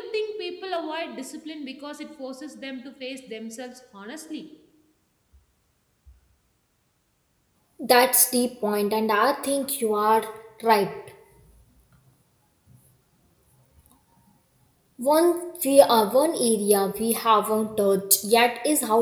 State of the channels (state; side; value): identical; both; correlation 1.00